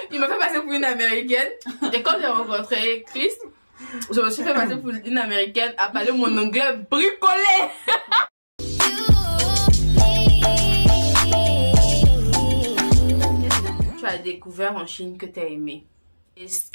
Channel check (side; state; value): both; inverted; correlation -1.00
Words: m'a fait passer pour une américaine. Et quand j'ai rencontré Chris, je me suis fait passer pour une américaine à parler mon anglais bricolé. Qu'est-ce que tu as découvert en Chine que tu as aimé? Et ce